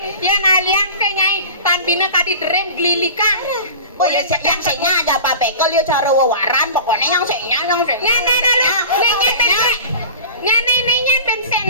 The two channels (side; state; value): both; inverted; correlation -0.36